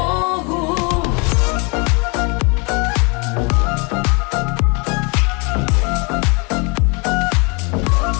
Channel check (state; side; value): quieter; right; 31.5 dB